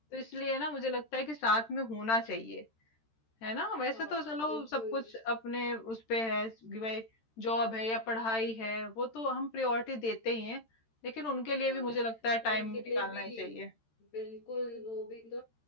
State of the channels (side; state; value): right; late; 13 ms